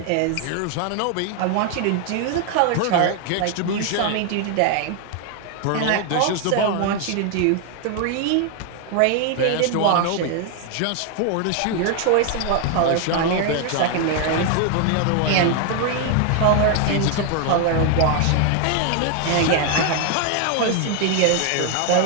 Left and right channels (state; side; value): different; both; correlation 0.01